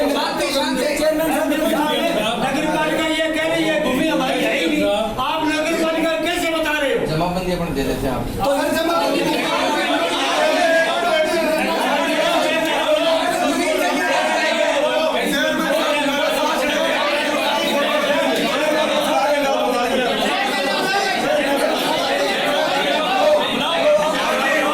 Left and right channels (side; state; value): both; identical; correlation 1.00